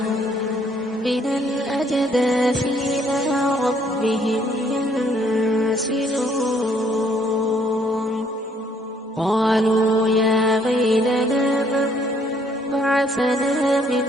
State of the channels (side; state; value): both; normal; correlation 0.66